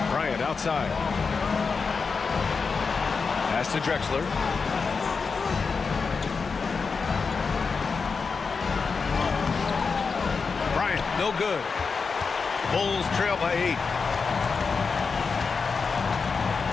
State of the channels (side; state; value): right; quieter; 5.0 dB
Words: Bryant outside. Pass to Drexler. Bryant, no good. Bulls trail by 8.